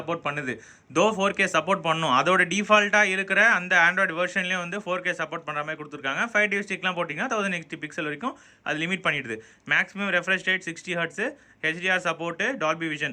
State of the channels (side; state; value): both; identical; correlation 1.00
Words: பண்ணுது. 4K சப்போர்ட் பண்ணும். அதோட டிஃபால்ட்டாக இருக்கிற அந்த ஆண்ட்ராய்டு வெர்ஷன்லேயே வந்து 4K சப்போர்ட் பண்ணுற மாதிரி கொடுத்துருக்காங்க. 5TV ஸ்டிக்லாம் போட்டிங்கன்னா 1080 பிக்சல் வரைக்கும் அது லிமிட் பண்ணிடுது. Maximum refresh rate 60 Hz, HDR support, Dolby